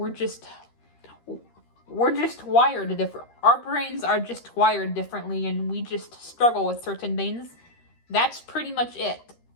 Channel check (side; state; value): right; late; 13 ms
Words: just wired different. Our brains are just wired differently, and we just struggle with certain things. That's pretty much it.